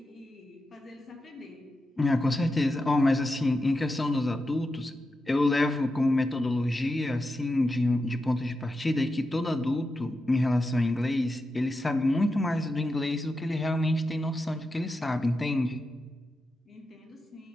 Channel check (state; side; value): normal; both; correlation 0.89